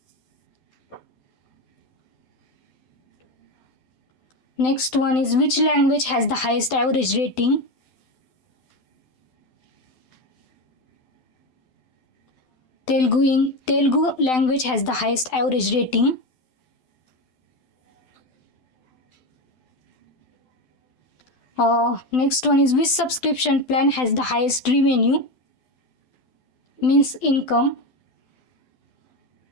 Next one is which language has the highest average rating? Telugu language has the highest average rating. Next one is which subscription plan has the highest revenue? Means income.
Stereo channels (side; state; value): right; late; 12 ms